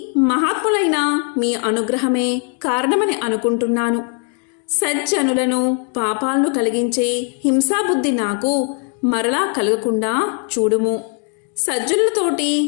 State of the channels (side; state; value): right; quieter; 37.2 dB